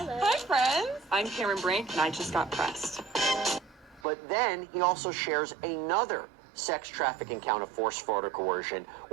friends. I'm Cameron Brink, and I just got pressed. But then he also shares another sex trafficking count of force, fraud, or coercion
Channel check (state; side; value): drops out; left; at 4.0 s